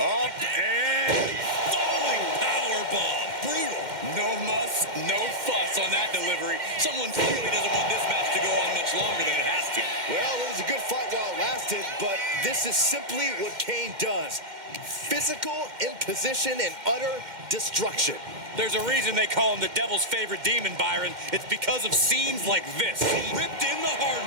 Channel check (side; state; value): left; late; 2.1 ms